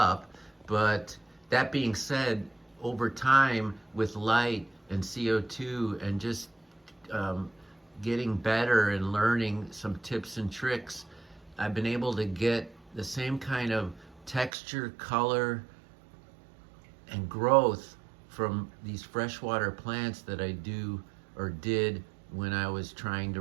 But that being said, over time, with light and CO2 and just getting better and learning some tips and tricks, I've been able to get the same kind of texture, color, and growth from these freshwater plants that I do or did when I was trying to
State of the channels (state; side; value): drops out; left; at 14.5 s